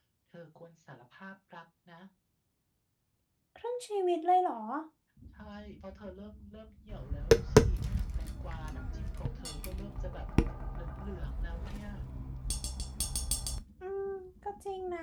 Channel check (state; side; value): identical; both; correlation 1.00